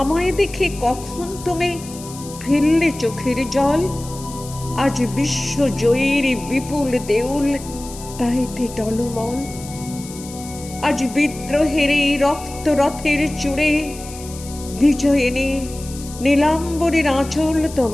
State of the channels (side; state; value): left; noise; hiss, 15 dB below the sound